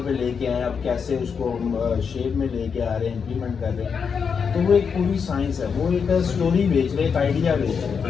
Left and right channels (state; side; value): quieter; right; 6.2 dB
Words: पे लेके आए, अब कैसे उसको हम शेप में लेके आ रहे हैं, इम्प्लीमेंट कर रहे हैं। तो वो एक पूरी साइंस है, वो एक स्टोरी बेच रहे, एक आइडिया बेच